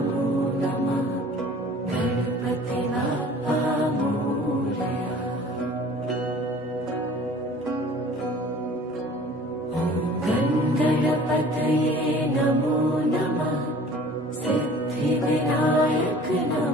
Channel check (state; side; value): normal; both; correlation 0.47